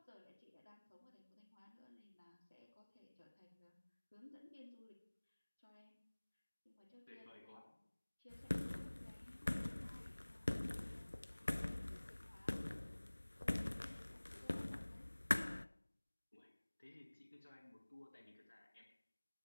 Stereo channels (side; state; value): both; inverted; correlation -1.00